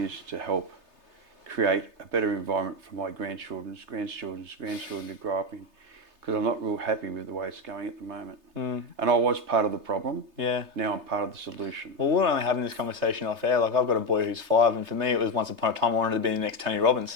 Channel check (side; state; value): left; late; 3.3 ms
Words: to help create a better environment for my grandchildren's grandchildren to grow up in, because I'm not real happy with the way it's going at the moment. And I was part of the problem. Yeah. Now I'm part of the solution. Well, we're only having this conversation off air. Like, I've got a boy who's 5, and for me, it was once upon a time I wanted to be the next Tony